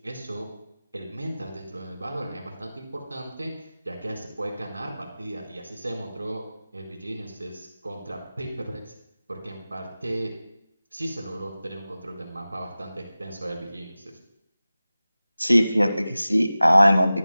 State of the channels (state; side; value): inverted; both; correlation -0.96